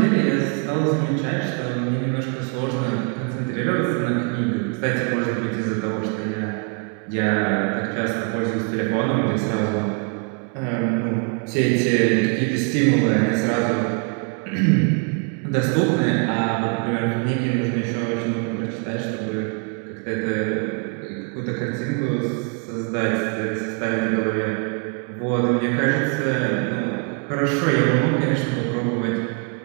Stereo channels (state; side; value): quieter; left; 35.4 dB